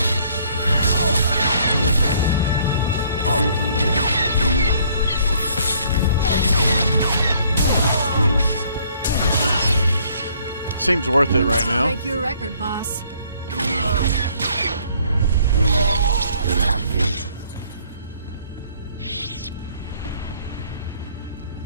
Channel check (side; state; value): both; inverted; correlation -0.62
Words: Seems worth it right now. Break your record, boss.